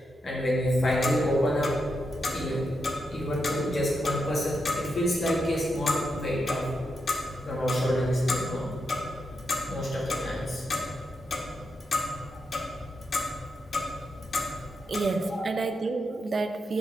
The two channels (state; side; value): normal; both; correlation 0.85